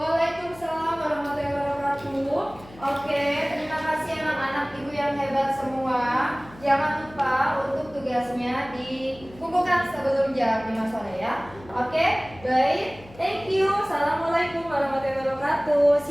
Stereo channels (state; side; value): noise; left; hum, 21 dB below the sound